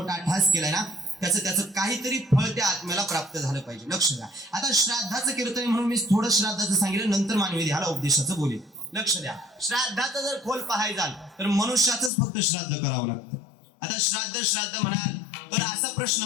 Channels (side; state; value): right; drops out; at 12.1 s